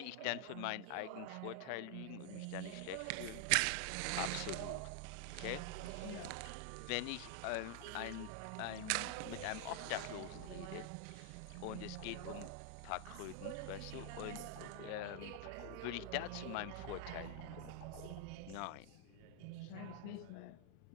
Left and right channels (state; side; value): different; both; correlation 0.00